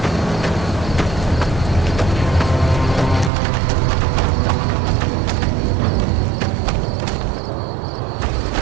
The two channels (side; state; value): left; drops out; at 3.3 s